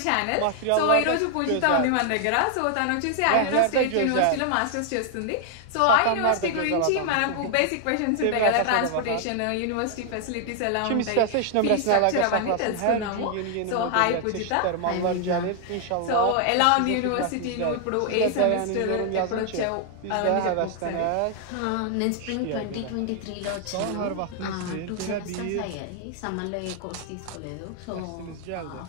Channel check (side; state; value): both; different; correlation 0.00